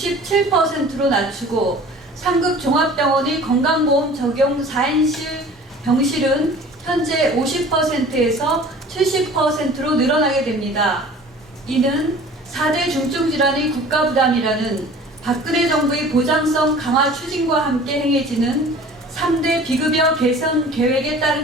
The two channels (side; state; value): both; normal; correlation 0.45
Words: 낮추고 상급 종합병원의 건강보험 적용 4인실 병실은 현재 50%에서 70%로 늘어나게 됩니다. 이는 4대 중증질환의 국가부담이라는 박근혜 정부의 보장성 강화 추진과 함께 행해지는 3대 비급여 개선 계획에